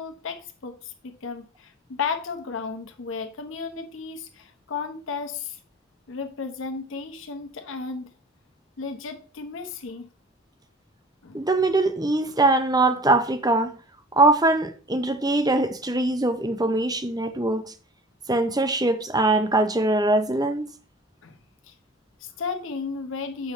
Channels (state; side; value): normal; both; correlation 0.43